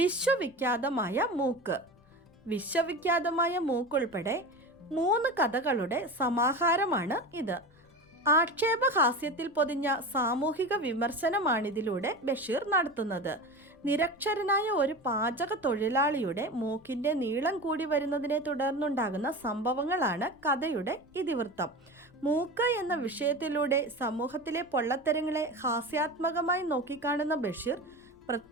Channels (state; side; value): noise; left; rumble, 29 dB below the sound